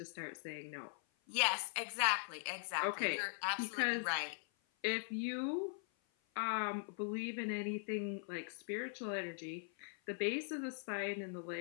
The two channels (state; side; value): silent; right; 50 dB below the other